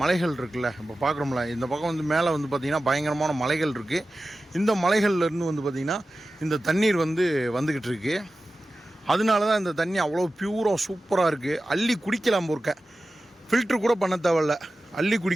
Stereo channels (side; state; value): both; normal; correlation 0.94